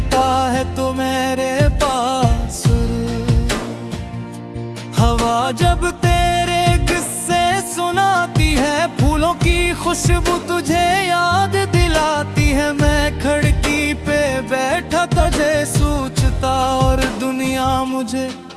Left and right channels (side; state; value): both; identical; correlation 1.00